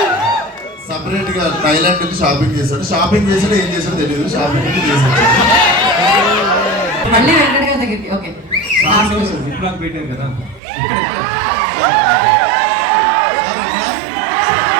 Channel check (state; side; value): drops out; left; at 10.6 s